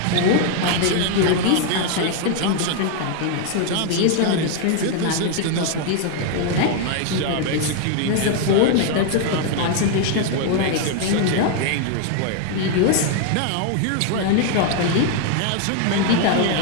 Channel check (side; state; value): both; different; correlation 0.00